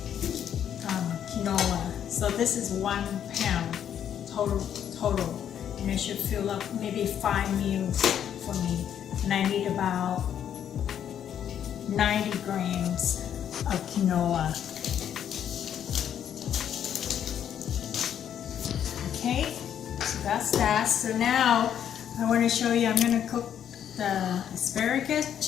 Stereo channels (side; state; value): right; quieter; 9.4 dB